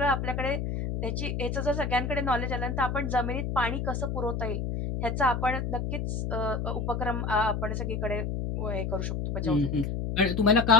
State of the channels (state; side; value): noise; left; hum, 2 dB below the sound